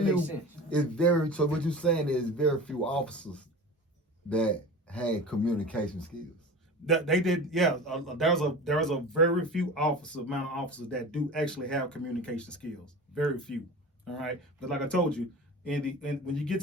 right. few. So what you're saying is very few officers that had communication skills. They did, yeah. There's a very few amount of officers that do actually have communication skills. Very few. All right. But like I told you, when you get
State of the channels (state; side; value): normal; both; correlation 0.35